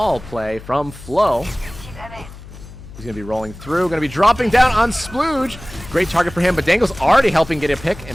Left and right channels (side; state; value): left; noise; hum, 16 dB below the sound